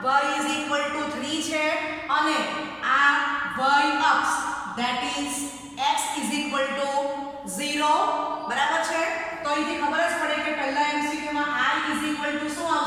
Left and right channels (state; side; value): identical; both; correlation 1.00